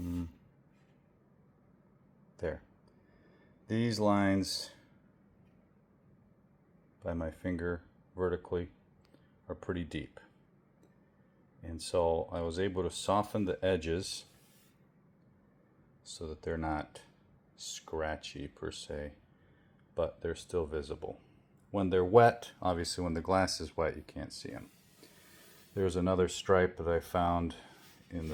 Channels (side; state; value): both; identical; correlation 1.00